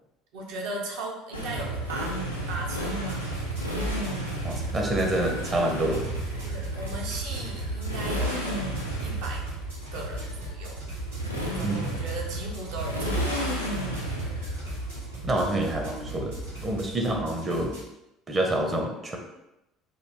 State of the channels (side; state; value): both; normal; correlation 0.39